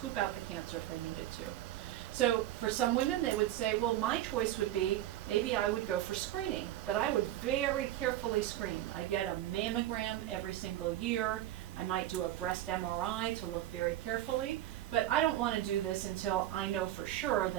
out the cancer if they needed to. So for some women, they would say, well, my choice would be, maybe I would go for screening, but I would very carefully screen. I get a mammogram every single year. I might do a breast MRI to look very carefully, but I don't want to do this until I know for sure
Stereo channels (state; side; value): quieter; left; 13.4 dB